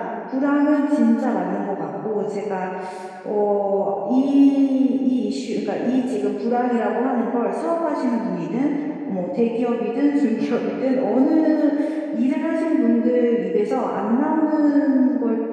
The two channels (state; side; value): identical; both; correlation 1.00